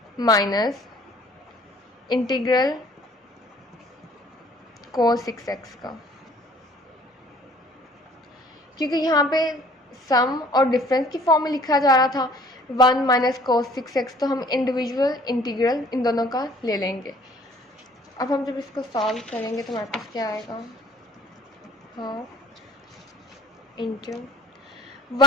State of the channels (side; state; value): both; normal; correlation 0.54